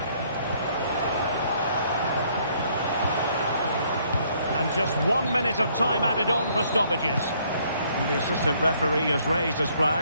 And just 1 minute of time added on for stoppages. And the assistant referee has raised his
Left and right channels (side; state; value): both; inverted; correlation -0.66